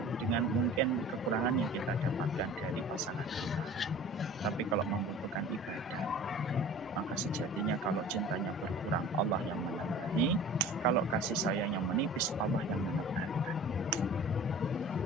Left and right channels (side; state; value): both; normal; correlation 0.42